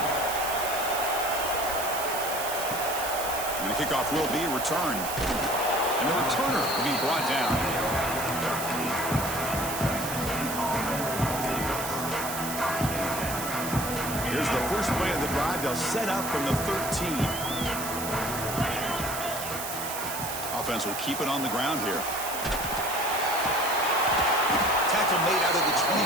And the kickoff will be returned. And the returner will be brought down. Here's the first play of the drive. They'll set up from the 13. Offense will keep it on the ground here. Tackle made out of the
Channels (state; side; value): noise; right; hiss, 6 dB below the sound